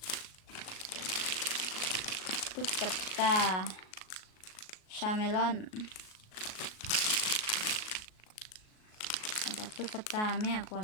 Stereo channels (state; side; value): late; right; 38 ms